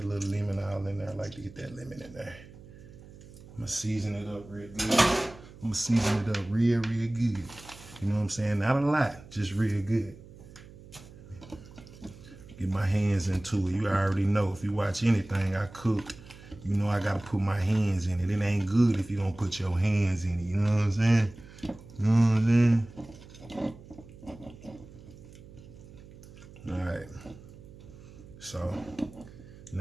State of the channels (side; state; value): right; noise; hum, 19 dB below the sound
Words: little lemon all in there. I like to get that lemon in there. I'm gonna season it up real good. I'm gonna season it up real good. You know what I'm saying? Not a lot, just real good. Get my hands into it. You already know, if you watch anything I cook, you know I gotta put my hands in it. It ain't good if you don't put your hands in it. You know what I'm saying? You know what I'm saying? All right. So